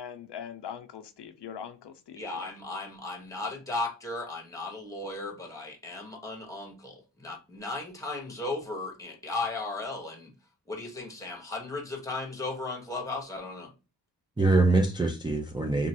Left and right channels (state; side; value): normal; both; correlation 0.65